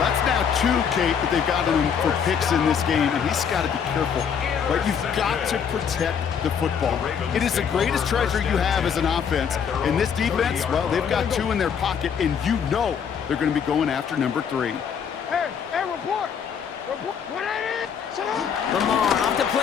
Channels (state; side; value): quieter; right; 7.3 dB